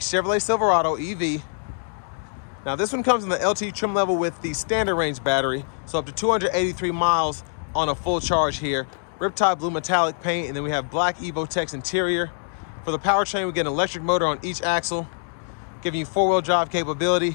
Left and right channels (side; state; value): right; silent; digital silence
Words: Chevrolet Silverado EV. Now this one comes in the LT trim level with the standard range battery, so up to 283 miles on a full charge here. Riptide blue metallic paint, and then we have black Evotex interior. For the powertrain, we get an electric motor on each axle, giving you four-wheel drive